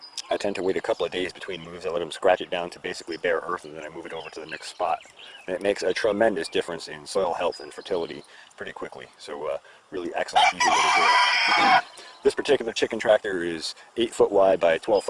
I tend to wait a couple of days between moves. I let them scratch it down to basically bare earth, and then I move it over to the next spot. And it makes a tremendous difference in soil health and fertility pretty quickly. So really excellent, easy way to do it. This particular chicken tractor is 8 foot wide by 12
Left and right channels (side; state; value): both; identical; correlation 1.00